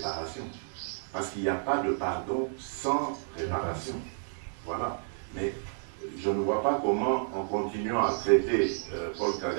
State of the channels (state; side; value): silent; left; digital silence